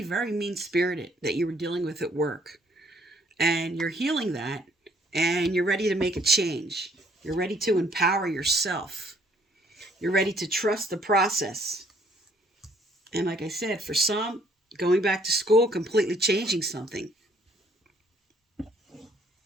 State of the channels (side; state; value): both; normal; correlation 0.64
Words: very mean-spirited that you were dealing with at work. And you're healing that, and you're ready to make a change. You're ready to empower yourself. You're ready to trust the process. And like I said, for some, going back to school, completely changing something.